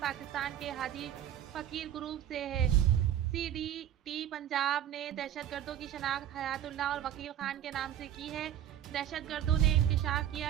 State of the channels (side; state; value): left; quieter; 10.9 dB